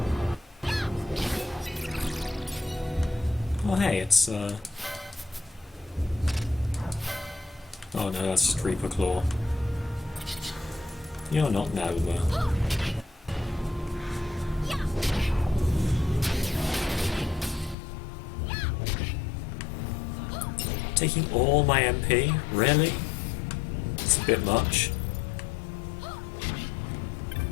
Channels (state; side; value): drops out; right; at 17.8 s